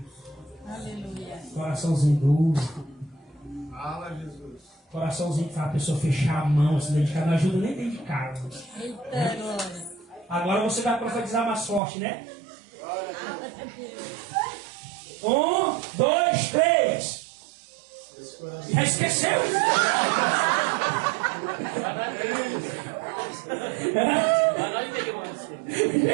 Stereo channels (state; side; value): drops out; left; at 11.8 s